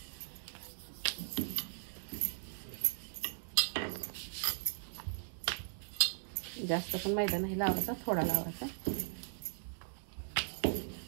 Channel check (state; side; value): silent; left; digital silence